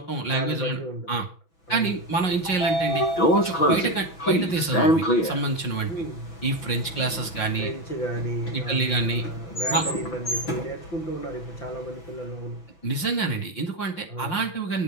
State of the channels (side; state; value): right; late; 5.6 ms